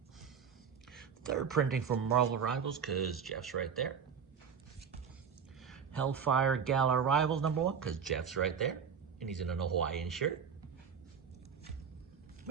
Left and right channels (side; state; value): left; quieter; 7.0 dB